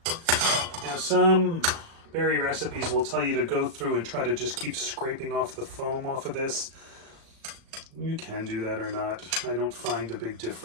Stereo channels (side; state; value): left; late; 36 ms